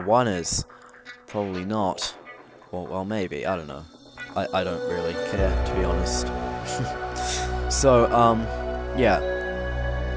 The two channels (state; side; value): identical; both; correlation 1.00